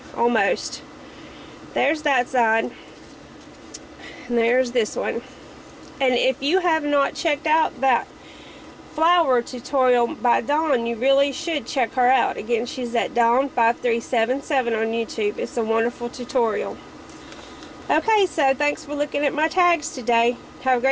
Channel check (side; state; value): both; identical; correlation 1.00